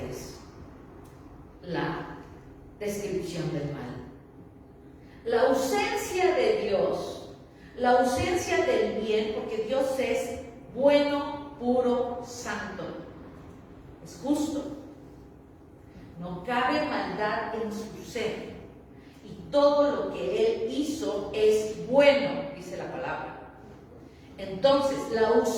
es la descripción del mal. La ausencia de Dios, la ausencia del bien, porque Dios es bueno, puro, santo, es justo. No cabe maldad en su ser. Y todo lo que Él hizo es bueno, dice la palabra. Entonces, la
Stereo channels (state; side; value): identical; both; correlation 1.00